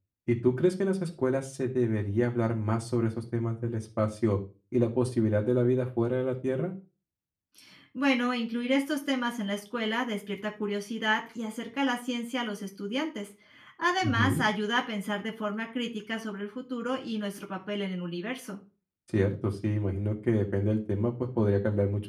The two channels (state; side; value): identical; both; correlation 1.00